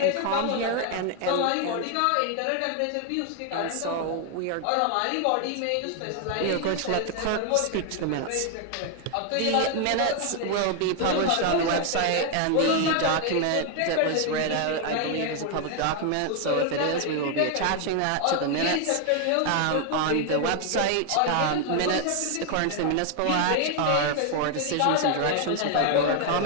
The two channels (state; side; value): different; both; correlation 0.00